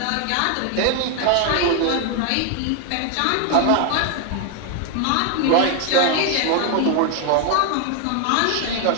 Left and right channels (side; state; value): both; different; correlation 0.00